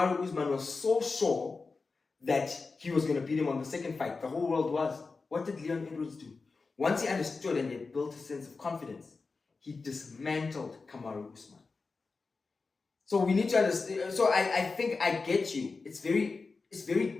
Usman was so sure that he was going to beat him on the second fight. The whole world was. What did Leon Edwards do? Once he understood and he had built a sense of confidence, he dismantled Kamaru Usman. So we need to understand. So I think I get you. It's very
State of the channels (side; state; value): right; quieter; 4.2 dB